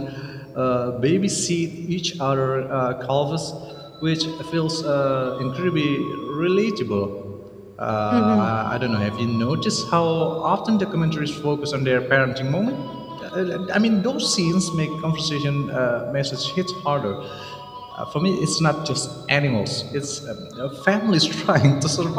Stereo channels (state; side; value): identical; both; correlation 1.00